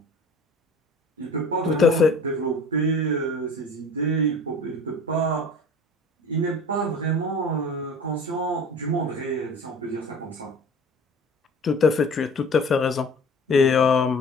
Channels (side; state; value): both; normal; correlation 0.42